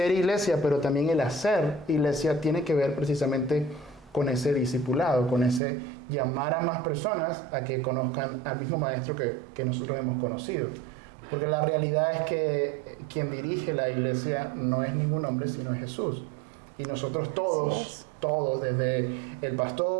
iglesia, pero también el hacer iglesia tiene que ver precisamente con ese discipulado, con ese llamar a más personas a que conozcan al mismo maestro que nosotros hemos conocido. Porque la realidad es que quien dirige la iglesia no es ningún hombre, sino es Jesús. Y nosotros todos, desde el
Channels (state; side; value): drops out; left; at 5.6 s